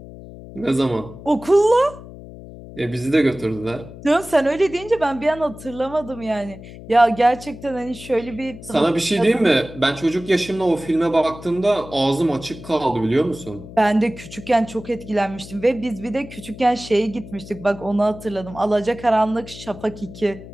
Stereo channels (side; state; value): left; noise; hum, 15 dB below the sound